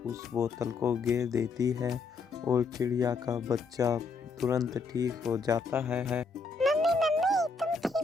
उस बोतल को गिर देती है और चिड़िया का बच्चा तुरंत ठीक हो जाता है। मम्मी मम्मी, तुम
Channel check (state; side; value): quieter; right; 4.4 dB